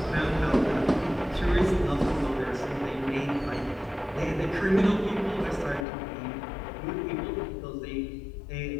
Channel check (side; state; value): right; drops out; at 5.9 s